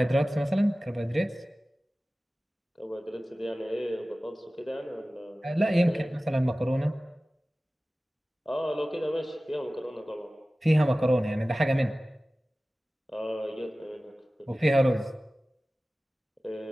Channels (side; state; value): both; normal; correlation 0.97